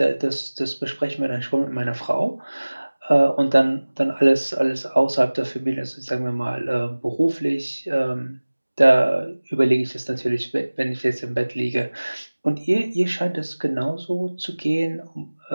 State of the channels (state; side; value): inverted; both; correlation -1.00